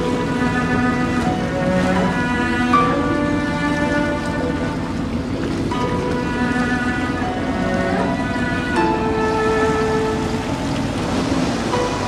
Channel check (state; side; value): identical; both; correlation 1.00